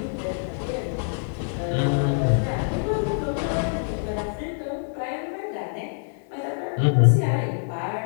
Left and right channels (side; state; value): right; silent; digital silence